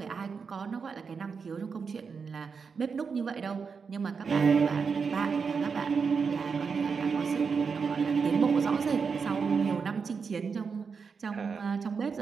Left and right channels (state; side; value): quieter; left; 5.6 dB